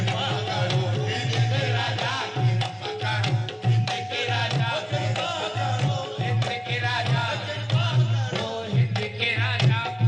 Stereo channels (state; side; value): identical; both; correlation 1.00